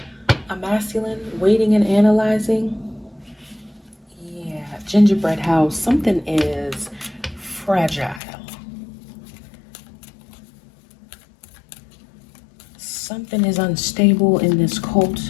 masculine, waiting and analyzing. Yeah, gingerbread house. Something is fragile. Something is unstable in this cult,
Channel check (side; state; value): right; drops out; at 8.2 s